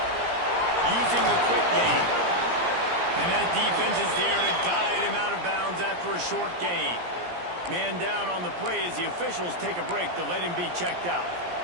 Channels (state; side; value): late; left; 17 ms